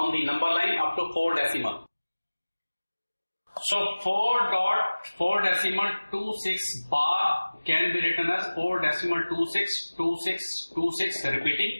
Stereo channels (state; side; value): inverted; both; correlation -1.00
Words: the number line up to 4 decimal. So 4 decimal 26 bar can be written as 4 decimal 26 26 26